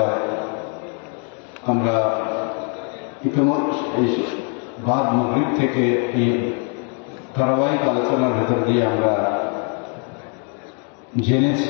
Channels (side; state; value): right; quieter; 39.8 dB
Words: আমরা ইতিমধ্যে বাদ মাগরিব থেকে এই ধারাবাহিক আলোচনার ভেতর দিয়ে আমরা